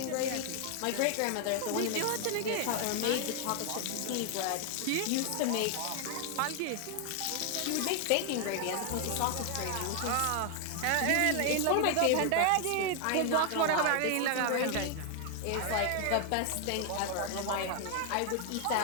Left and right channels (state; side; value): different; both; correlation 0.00